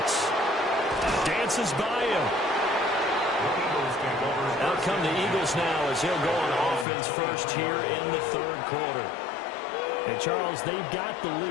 Dances by him. Out come the Eagles now as he'll go on offense first here in the third quarter. And Charles, they've got the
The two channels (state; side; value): drops out; right; at 6.9 s